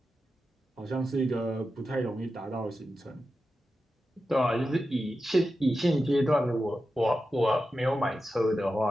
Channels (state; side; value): normal; both; correlation 0.91